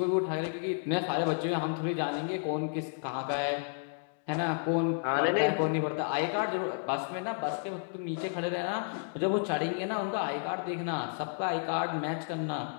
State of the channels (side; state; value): right; silent; digital silence